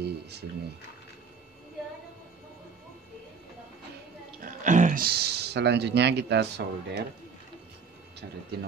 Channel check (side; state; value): left; quieter; 5.7 dB